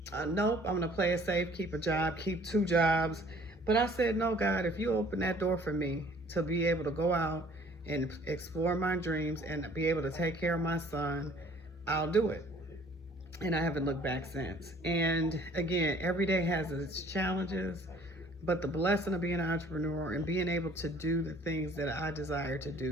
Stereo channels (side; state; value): both; normal; correlation 0.55